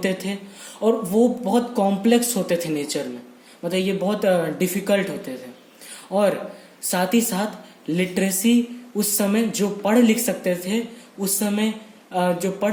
थे और वो बहुत कॉम्प्लेक्स होते थे नेचर में, मतलब ये बहुत डिफिकल्ट होते थे। और साथ ही साथ लिटरेसी, उस समय जो पढ़ लिख सकते थे, उस समय जो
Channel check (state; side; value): identical; both; correlation 1.00